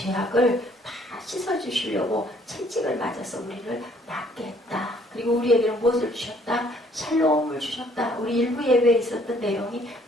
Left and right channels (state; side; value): normal; both; correlation 0.62